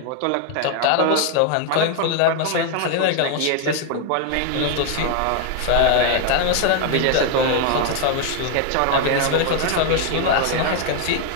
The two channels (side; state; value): both; different; correlation 0.01